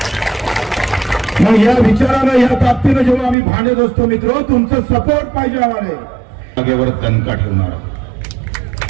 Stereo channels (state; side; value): drops out; left; at 3.4 s